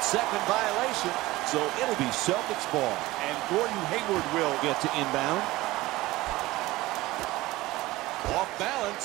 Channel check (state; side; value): quieter; left; 18.7 dB